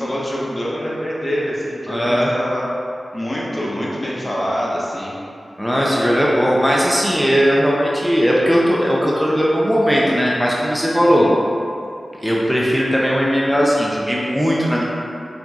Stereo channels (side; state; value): both; normal; correlation 0.96